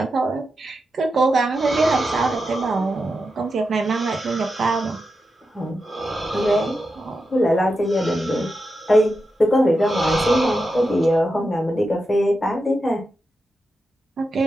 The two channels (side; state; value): both; normal; correlation 0.89